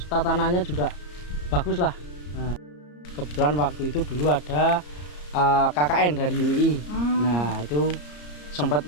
tatanannya juga bagus lah. Nah, kebetulan waktu itu dulu ada KKN dari UI. Nah, itu sempat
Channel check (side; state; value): right; late; 34 ms